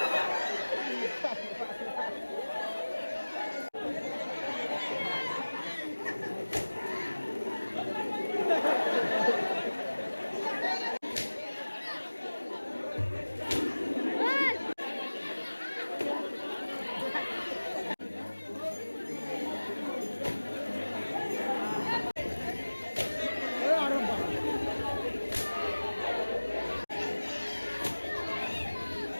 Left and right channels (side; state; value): both; inverted; correlation -1.00